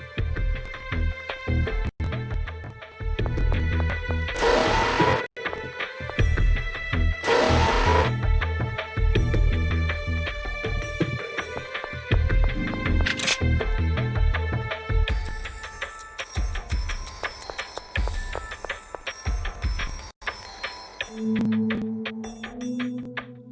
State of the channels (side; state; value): both; identical; correlation 1.00